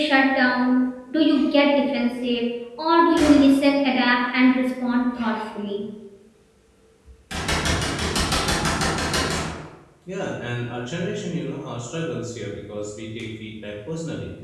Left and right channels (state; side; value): identical; both; correlation 1.00